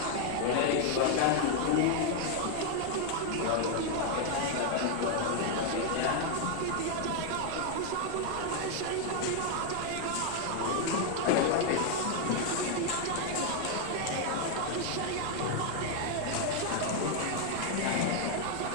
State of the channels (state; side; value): different; both; correlation 0.00